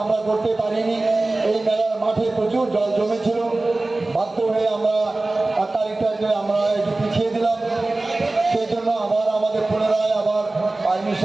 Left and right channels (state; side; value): quieter; left; 3.0 dB